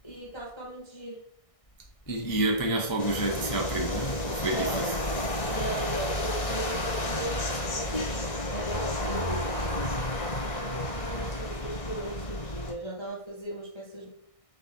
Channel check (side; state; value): right; late; 1.6 ms